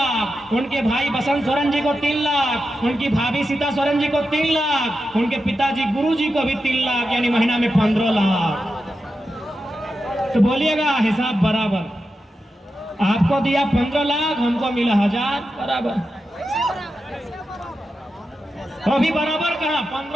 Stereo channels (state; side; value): normal; both; correlation 0.89